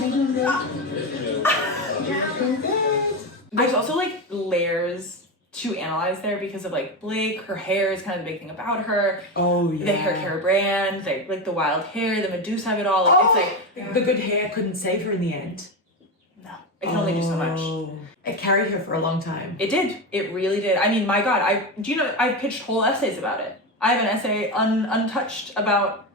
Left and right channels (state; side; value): normal; both; correlation 0.16